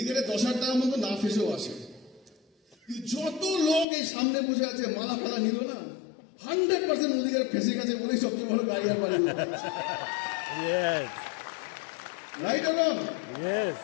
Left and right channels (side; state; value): right; drops out; at 3.9 s